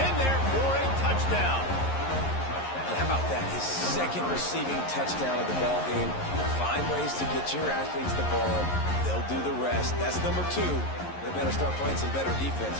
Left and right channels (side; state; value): right; late; 11 ms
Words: in there for a touchdown. And how about that? His 2nd receiving touchdown of the ball game. Find ways to get your athletes the ball. They'll do the rest. That's number 2. They better start playing some better defense,